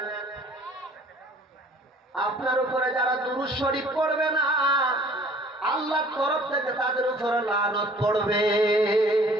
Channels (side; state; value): both; normal; correlation 0.53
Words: আপনার উপরে যারা দুরূদ শরীফ পড়বে না, আল্লাহর তরফ থেকে তাদের উপরে লানত পড়বে।